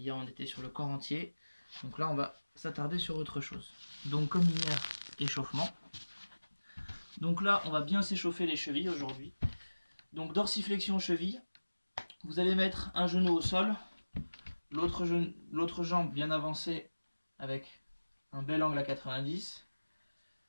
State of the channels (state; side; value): inverted; both; correlation -1.00